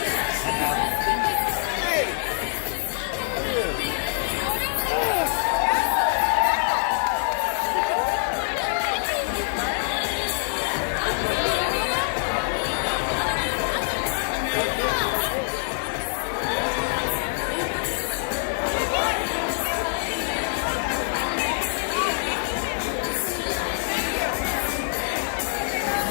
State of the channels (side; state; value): right; silent; digital silence